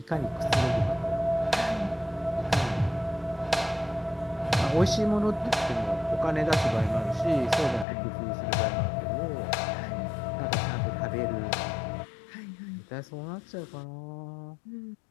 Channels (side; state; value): right; drops out; at 7.9 s